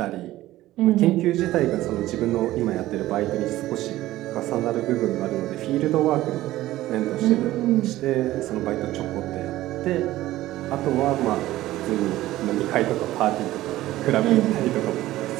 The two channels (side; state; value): left; quieter; 15.7 dB